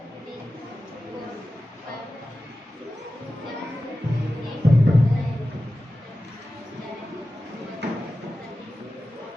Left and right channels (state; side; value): normal; both; correlation 0.94